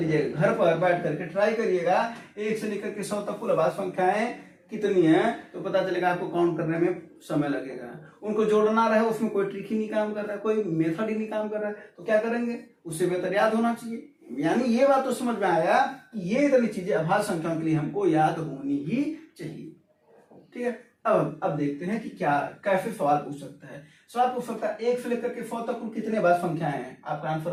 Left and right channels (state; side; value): identical; both; correlation 1.00